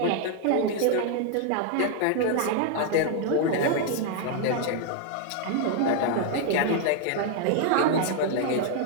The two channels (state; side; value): different; both; correlation 0.00